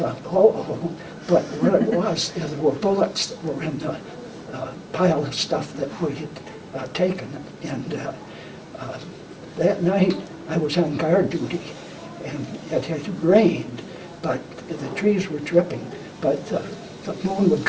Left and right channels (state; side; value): identical; both; correlation 1.00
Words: oh. But what it was, there were bullets that were in the pile of stuff that we had taken. And that night, I was on guard duty, and it had rained, but the trees were dripping. But the moon would